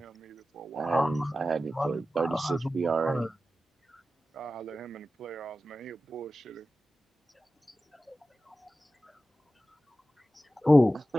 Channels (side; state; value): both; normal; correlation 0.94